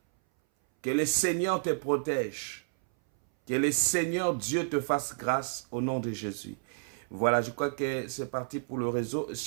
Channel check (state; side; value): silent; left; 57 dB below the other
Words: Que le Seigneur te protège. Que le Seigneur Dieu te fasse grâce au nom de Jésus. Voilà, je crois que c'est parti pour le réseau.